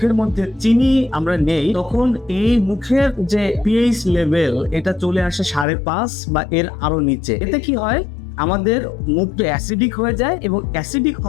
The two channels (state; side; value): drops out; right; at 5.7 s